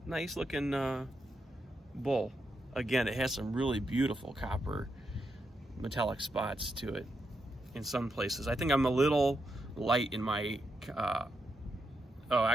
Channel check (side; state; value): both; normal; correlation 0.83